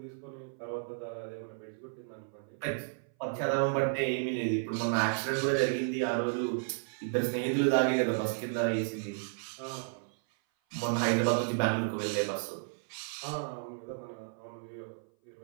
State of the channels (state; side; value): silent; left; 56 dB below the other